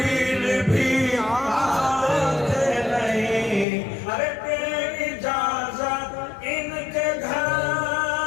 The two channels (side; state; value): right; drops out; at 3.7 s